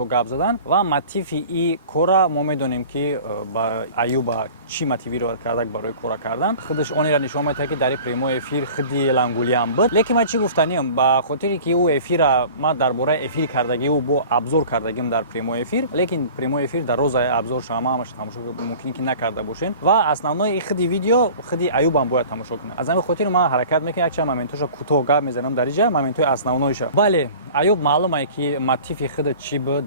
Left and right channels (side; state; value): both; inverted; correlation -0.43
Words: гап задан ва мотиви и кора мо медонем ки ба Аюба чӣ мотивировать кардак барои кора кардан. Худаш онеро нишон медиҳад ки дар ин прямои эфир худи Ангулиам буд. Лекин ман чӣ гуфтаниям ба хотире ки ӯ эфира ма дар бораи эфир кардагӣ ӯ бо абзор кардагим дар прямои эфир, лекин прямои эфир дар розаи абзор ҳамааш тамошо мумкин ки накарда бошен ва основной худи видео худи Аюбам бояд тамошо кунад. Аз ҳамин хотир ман ҳаракат мекунам якчанд моментоша кӯтоҳ гап мезанам дар инҷа, моментҳои основноиша. Бале, Аюб маълуме ки мотиви худа чӣ буд